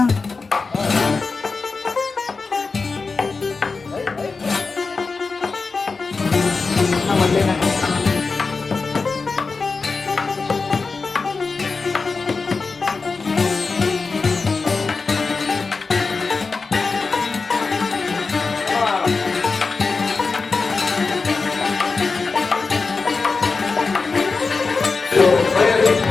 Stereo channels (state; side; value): quieter; right; 4.3 dB